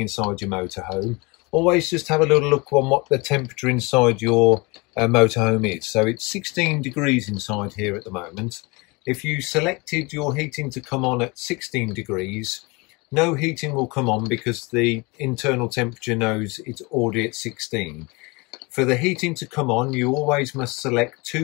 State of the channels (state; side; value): quieter; right; 26.7 dB